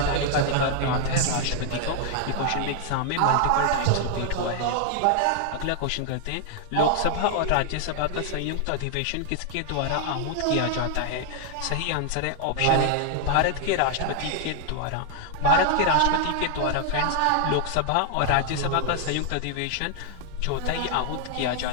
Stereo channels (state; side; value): different; both; correlation 0.00